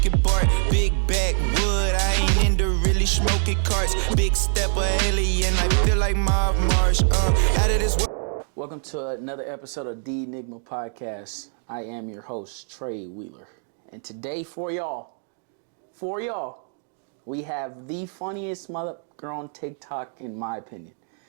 Bart. Big backwood, I ain't into really smoking carts. Big step of alien, I feel like Mob Marsh. Out of this world. Welcome to another episode of the Enigma podcast. I am your host, Trey Wheeler. And today for y'all, we have the funniest mother girl on TikTok, in my opinion.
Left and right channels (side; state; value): left; silent; 57 dB below the other